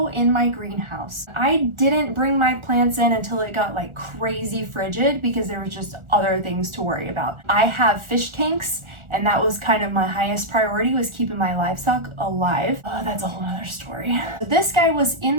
in my greenhouse. I didn't bring my plants in until it got like crazy frigid because there was just other things to worry about. I have fish tanks, and that was kind of my highest priority, was keeping my livestock alive. Oh, that's a whole other story. This guy was in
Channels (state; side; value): late; left; 1.4 ms